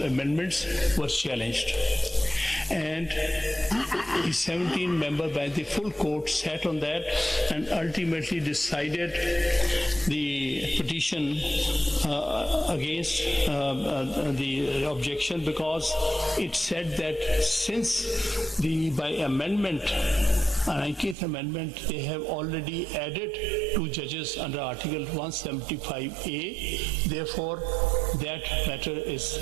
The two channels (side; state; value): left; drops out; at 21.2 s